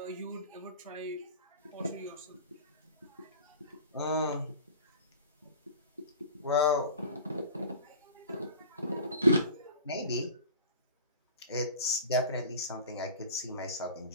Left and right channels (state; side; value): inverted; both; correlation -0.41